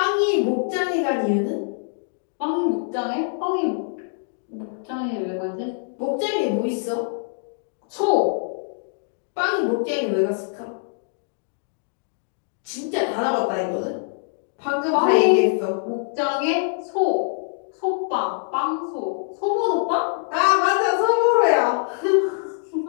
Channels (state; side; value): silent; right; digital silence